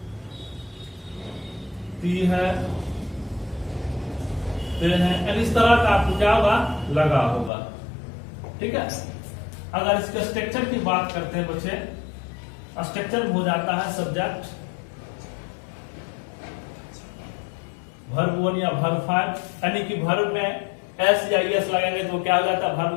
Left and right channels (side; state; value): right; drops out; at 7.5 s